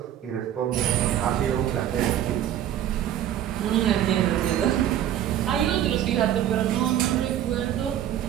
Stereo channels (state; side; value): quieter; left; 11.2 dB